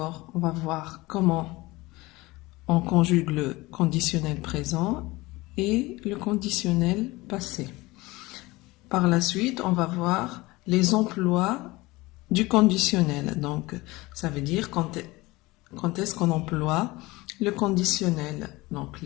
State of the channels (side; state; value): right; quieter; 21.2 dB